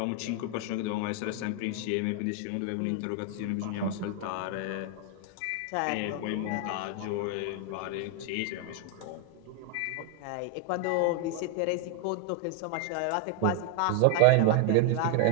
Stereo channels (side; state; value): both; different; correlation 0.00